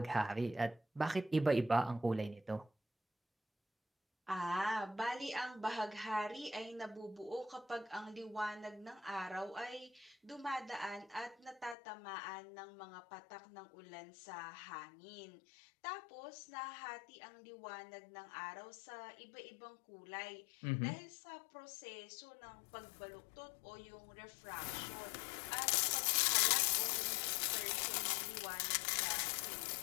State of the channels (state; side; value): drops out; right; at 11.8 s